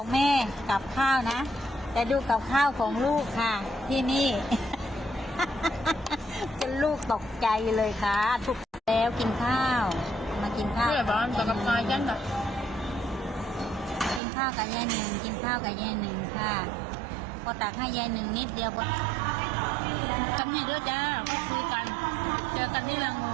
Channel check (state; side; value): drops out; left; at 14.2 s